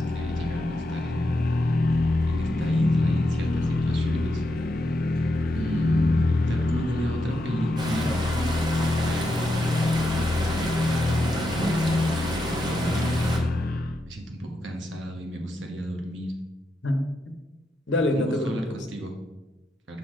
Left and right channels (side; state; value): both; normal; correlation 0.84